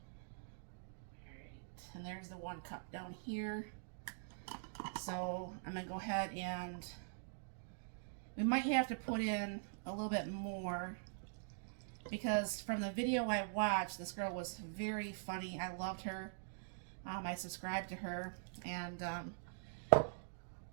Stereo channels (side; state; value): left; silent; digital silence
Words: Alright, and there's the 1 cup down here. So I'm going to go ahead and we might have to put in a little bit more, because from the video I watched, this girl was very funny. I loved her. I subscribed to her, and